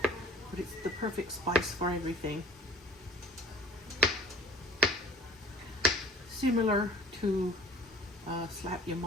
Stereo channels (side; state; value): both; normal; correlation 0.48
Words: but it's the perfect spice for everything. Similar to Slap Your